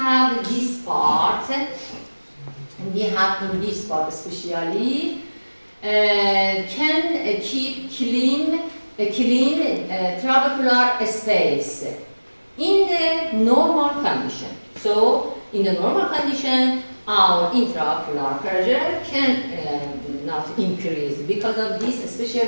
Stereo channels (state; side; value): inverted; both; correlation -1.00